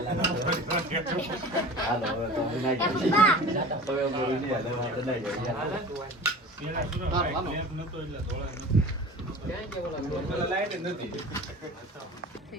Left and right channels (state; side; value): normal; both; correlation 0.38